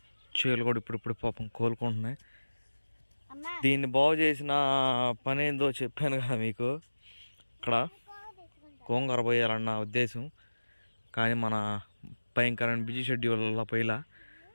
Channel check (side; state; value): both; inverted; correlation -1.00